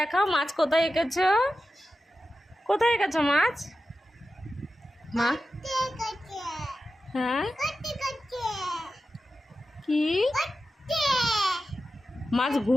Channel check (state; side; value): normal; both; correlation 0.93